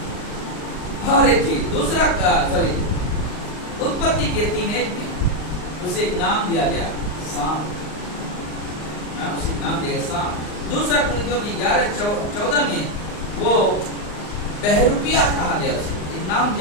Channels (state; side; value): late; right; 39 ms